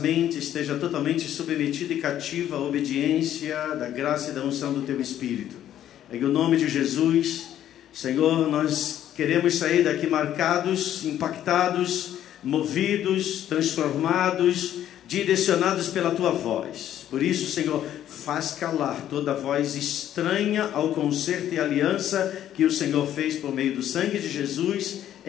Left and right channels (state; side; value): quieter; right; 11.4 dB